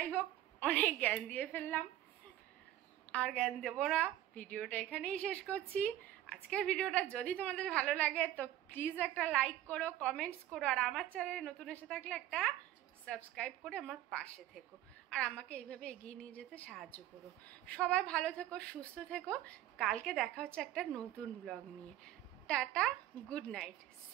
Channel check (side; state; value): left; quieter; 13.3 dB